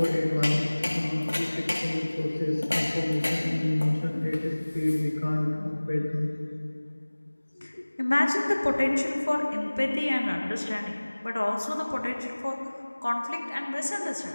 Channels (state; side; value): inverted; both; correlation -1.00